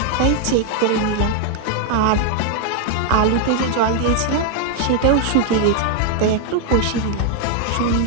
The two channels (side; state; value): both; different; correlation 0.00